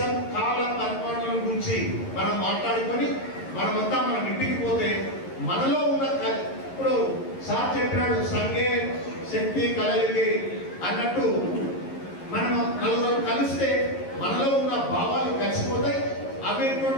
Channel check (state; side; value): late; right; 11 ms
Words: కాల పరిపాలన గురించి మనం మాట్లాడుకొని మనమంతా మనం ఇంటికి పోతే మనలో ఉన్న ఇప్పుడు సార్ చెప్పినాడు సంగే శక్తి కలయికి అన్నట్టు మనం నలుగురు కలిస్తే మనలో ఉన్న భావాలు కలిసిపోతాయి. అవి